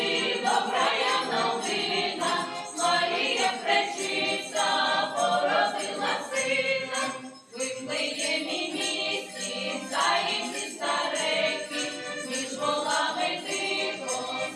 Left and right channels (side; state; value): both; identical; correlation 1.00